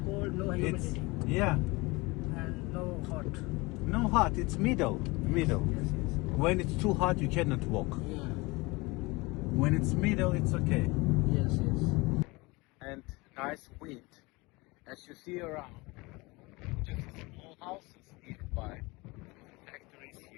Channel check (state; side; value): quieter; right; 24.1 dB